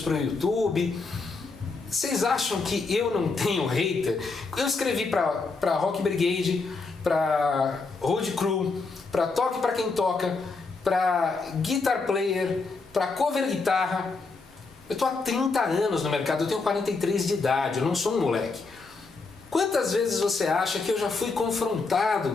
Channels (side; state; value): right; quieter; 4.1 dB